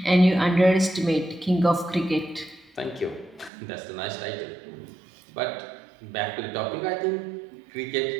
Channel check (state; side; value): drops out; left; at 3.5 s